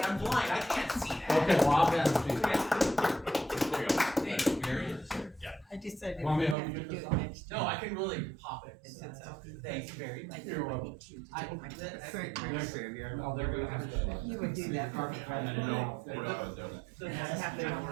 I'm blind, I can't see that. Okay, well, I'll get it. There you go. Thank you, Gary. I decided Want me we to have help to you do get it this next No, I can really pop it. It sits out. Thanks, Barry. Like, You're welcome. want you to I- take my- that- Very Thanks, pretty. Sandy. Oh, they're gonna have to. You would do that for me. No, we're not gonna do it. So just have their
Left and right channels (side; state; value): left; drops out; at 6.6 s